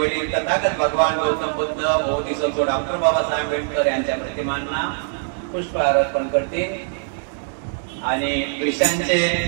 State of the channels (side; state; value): left; silent; digital silence